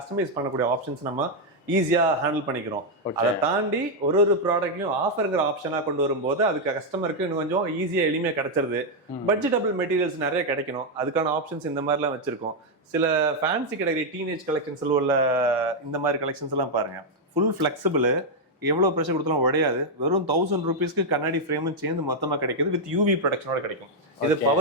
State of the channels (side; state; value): both; normal; correlation 0.00